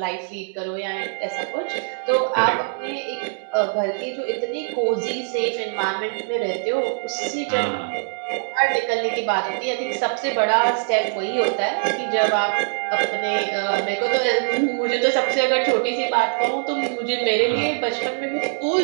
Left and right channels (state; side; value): silent; left; digital silence